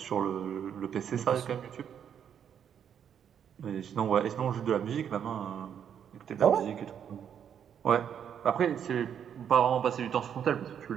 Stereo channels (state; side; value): quieter; left; 8.5 dB